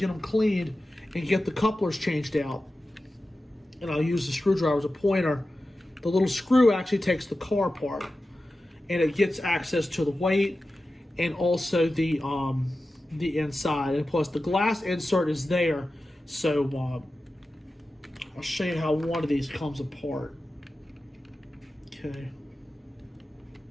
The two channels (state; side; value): normal; both; correlation 0.93